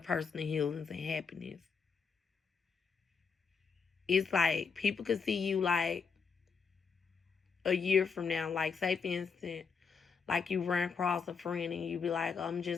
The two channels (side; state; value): right; quieter; 5.6 dB